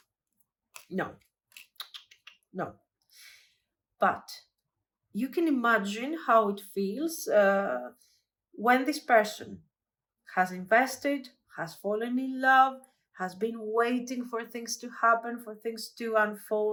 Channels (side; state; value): both; identical; correlation 1.00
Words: No. But you can imagine how it feels when this person has invested, has fallen in love, has been waiting for things to happen, for things to